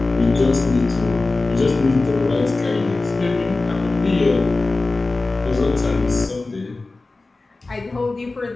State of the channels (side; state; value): right; quieter; 3.4 dB